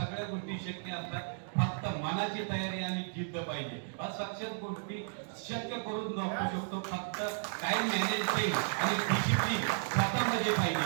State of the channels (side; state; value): left; silent; digital silence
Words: गोष्टी शक्य असतात, फक्त मनाची तयारी आणि जिद्द पाहिजे. अशक्य गोष्टी शक्य करून दाखवू शकतो, फक्त टाइम मॅनेजमेंट आणि डिसिप्लिन स्वतःमध्ये